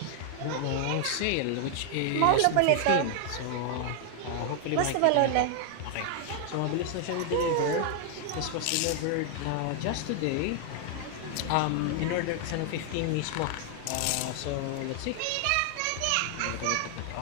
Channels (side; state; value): both; different; correlation 0.00